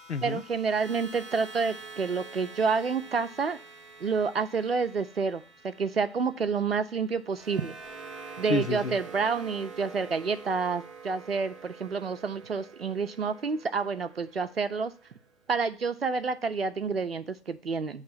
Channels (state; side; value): quieter; left; 4.3 dB